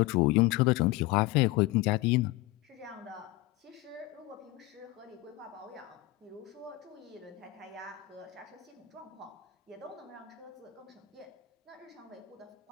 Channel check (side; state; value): right; quieter; 18.0 dB